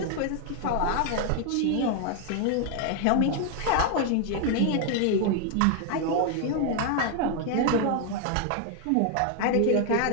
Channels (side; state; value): both; different; correlation 0.00